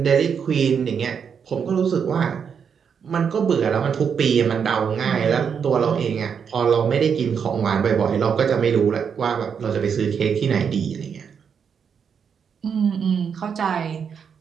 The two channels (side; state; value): left; quieter; 6.9 dB